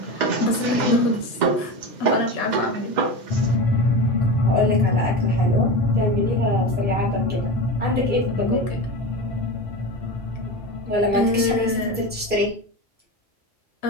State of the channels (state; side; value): normal; both; correlation 0.24